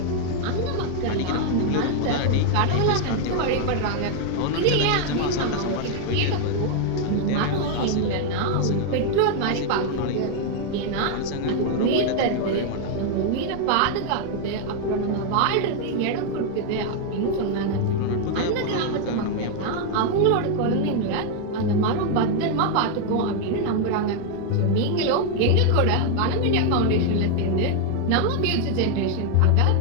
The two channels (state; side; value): different; both; correlation 0.00